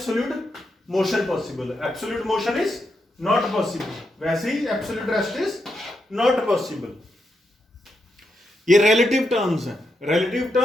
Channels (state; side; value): normal; both; correlation 0.83